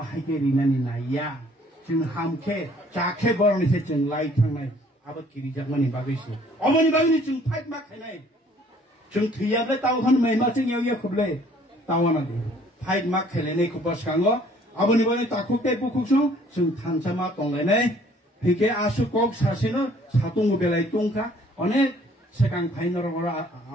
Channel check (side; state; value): both; normal; correlation 0.58